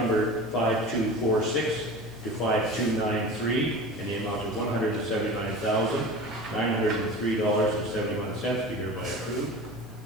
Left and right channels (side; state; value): left; noise; hiss, 27 dB below the sound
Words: 5246 to 5293 in the amount of $179,903.71 be hereby approved.